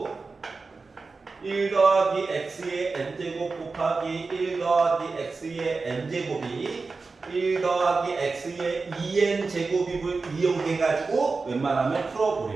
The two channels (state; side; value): quieter; left; 4.1 dB